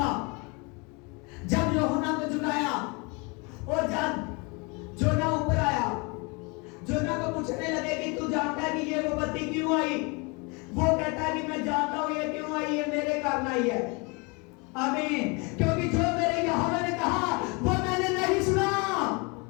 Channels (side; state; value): right; quieter; 29.9 dB